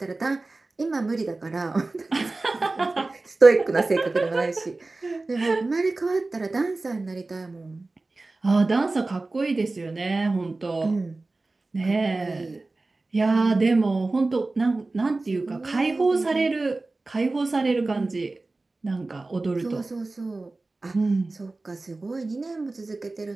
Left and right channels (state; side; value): quieter; left; 3.3 dB